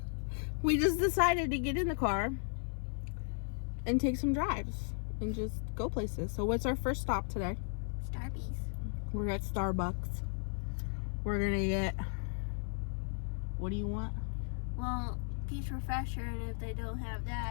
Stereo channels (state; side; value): silent; right; 54 dB below the other